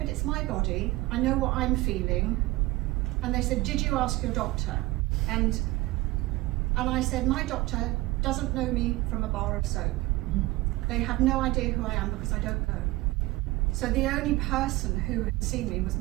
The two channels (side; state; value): left; quieter; 20.0 dB